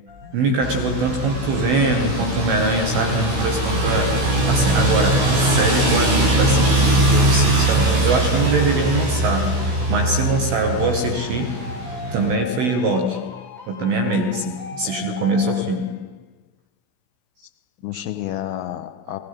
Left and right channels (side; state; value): left; late; 16 ms